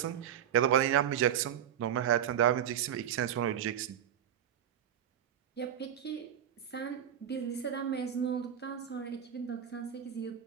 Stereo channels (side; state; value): left; quieter; 9.7 dB